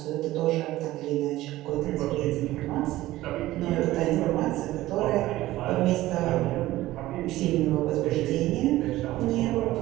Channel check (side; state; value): left; quieter; 16.4 dB